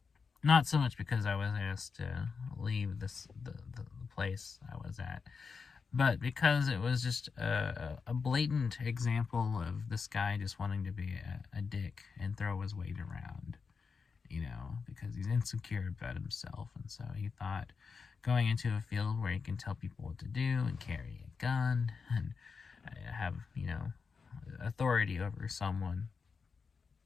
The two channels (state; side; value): quieter; right; 5.3 dB